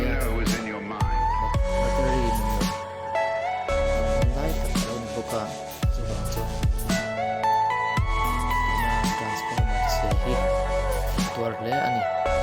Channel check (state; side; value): identical; both; correlation 1.00